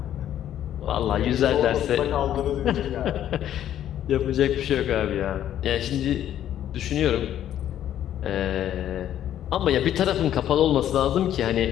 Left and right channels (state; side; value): quieter; right; 11.1 dB